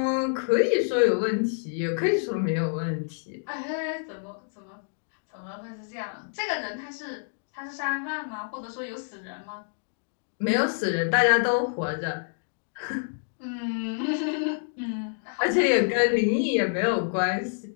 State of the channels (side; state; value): right; silent; digital silence